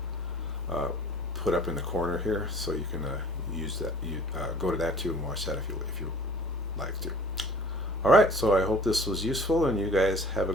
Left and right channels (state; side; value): noise; left; rumble, 24 dB below the sound